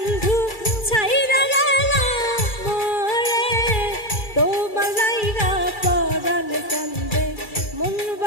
ছাইরা গেলা মোরে, তোমার লাইগা পরাণ কান্দে, মন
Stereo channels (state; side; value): late; right; 2.3 ms